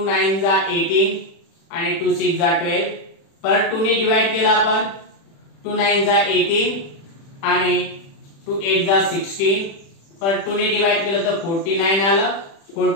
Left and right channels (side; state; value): right; late; 36 ms